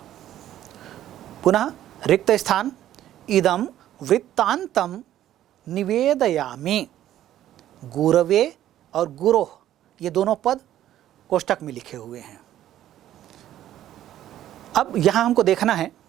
पुनः रिक्त स्थान इदम वृत्तांतम निवेदयामि। गुरवे और गुरोह ये दोनों पद कोष्ठक में लिखे हुए हैं। अब यहाँ हमको देखना है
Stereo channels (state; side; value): quieter; left; 12.4 dB